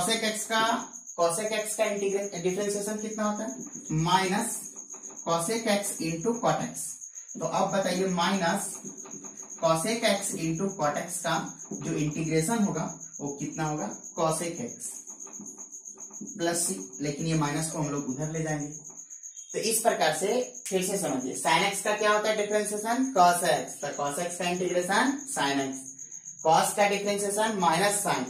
एक्स का डिफरेंशिएशन कितना होता है minus cosec x into cot x. तो अब बताइए minus cosec x into cot x का जो इंटीग्रेशन होगा वो कितना होगा कॉसेक एक्स प्लस सी। लेकिन ये माइनस को हम लोग उधर ले जाएंगे। तो इस प्रकार से फिर से समझिए साइन एक्स का क्या होता है डिफरेंशिएशन कॉस एक्स, तो कॉस एक्स का इंटीग्रेशन साइन एक्स, कॉस का डिफरेंशिएशन माइनस साइन,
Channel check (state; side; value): identical; both; correlation 1.00